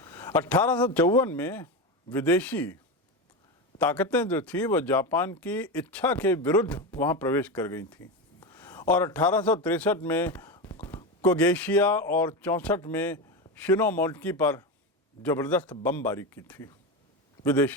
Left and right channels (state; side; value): normal; both; correlation 0.18